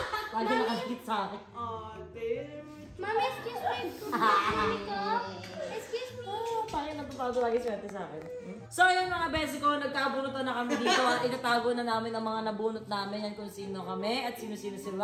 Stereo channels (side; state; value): both; identical; correlation 1.00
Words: Lagi nakakit sa akin. Mami, excuse me. Mami ko. Excuse me. Parang natutado lagi swerte sa akin. So yun mga besi ko, nagkabunutan na kami dito at itatago na namin ang mga nabunot namin yan kung sino kami at sino-sino